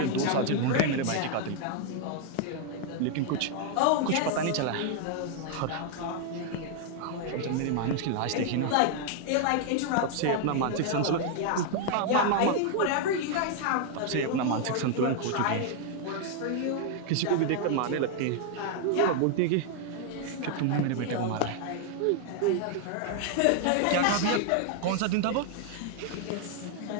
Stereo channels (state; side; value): different; both; correlation 0.00